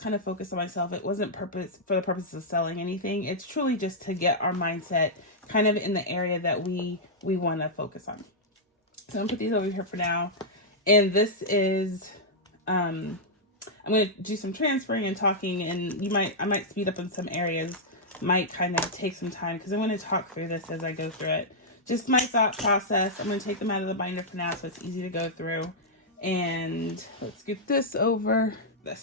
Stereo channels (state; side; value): normal; both; correlation -0.07